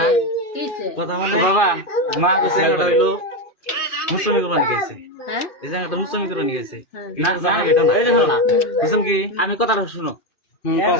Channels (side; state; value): right; late; 2.4 ms